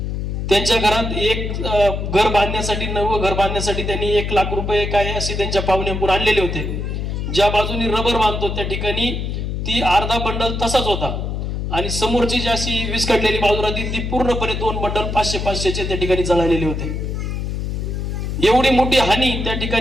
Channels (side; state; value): left; noise; hum, 3 dB below the sound